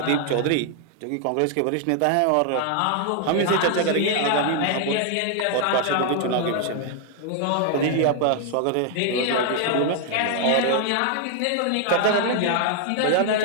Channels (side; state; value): both; different; correlation 0.00